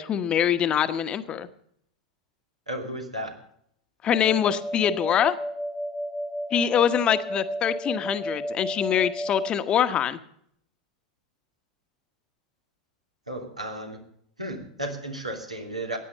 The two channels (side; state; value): right; quieter; 6.8 dB